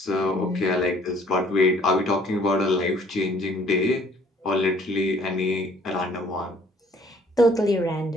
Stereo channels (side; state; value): both; normal; correlation 0.59